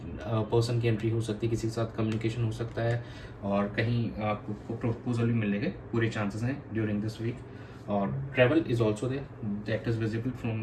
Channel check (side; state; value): both; identical; correlation 1.00